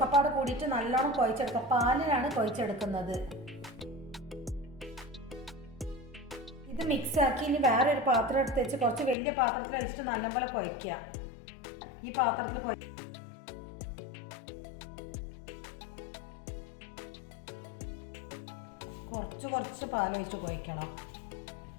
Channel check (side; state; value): right; drops out; at 9.2 s